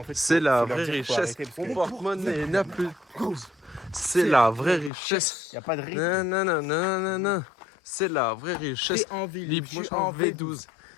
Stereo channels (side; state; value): right; drops out; at 4.9 s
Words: c'est la vraie richesse. Mon porte-monnaie n'a plus de pause. C'est la vraie richesse. Y a pas de rythme. Non, non, non, non, non, non. C'est la vraie richesse. T'es en ville, Libre, je moi, suis je suis en en V12.